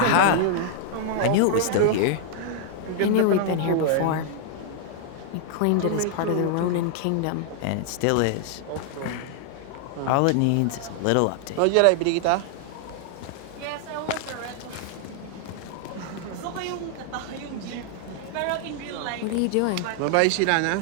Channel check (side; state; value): both; different; correlation 0.00